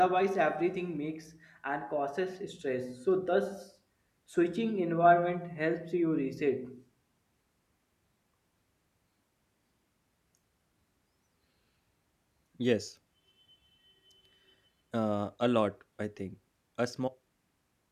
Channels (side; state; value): both; identical; correlation 1.00